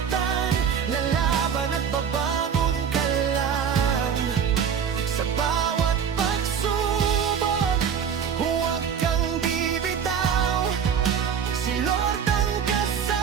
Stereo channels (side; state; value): left; quieter; 7.5 dB